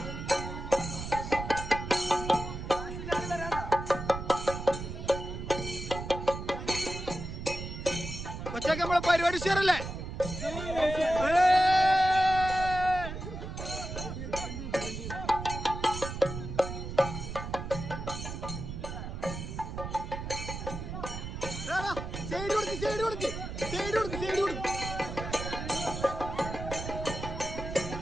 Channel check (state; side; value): noise; right; rumble, 7 dB below the sound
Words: കൊച്ചൊക്കെ നമ്മളെ പരിപാടി ഷെയറല്ലേ?